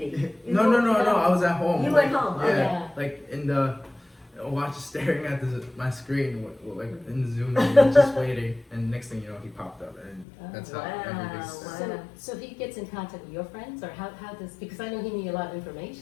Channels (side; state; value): right; drops out; at 10.2 s